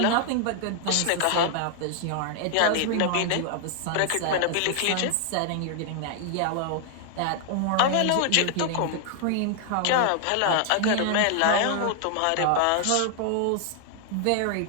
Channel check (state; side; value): different; both; correlation 0.00